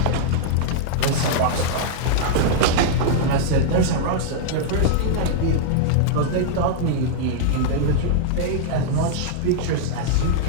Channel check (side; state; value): both; different; correlation -0.01